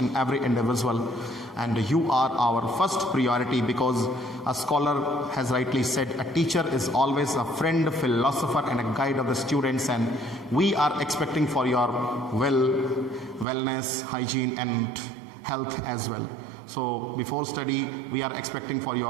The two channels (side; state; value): left; drops out; at 13.5 s